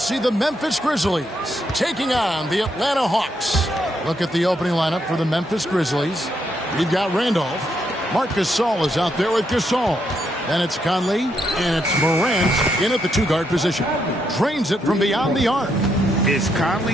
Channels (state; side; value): normal; both; correlation 0.78